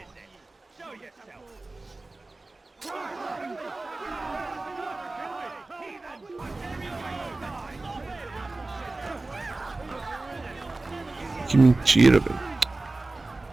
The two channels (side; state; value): left; quieter; 3.1 dB